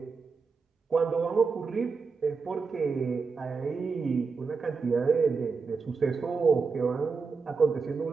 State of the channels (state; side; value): quieter; left; 4.9 dB